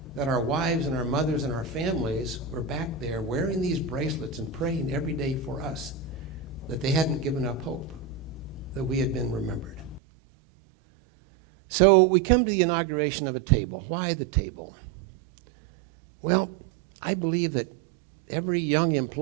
that our wives and our mothers and our families were back there wearing these bracelets and praying every day for us, that they hadn't given up hope, that we had been remembered. So we come to the inauguration of a table. Why the table? Well, I believe that every young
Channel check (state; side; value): drops out; left; at 10.0 s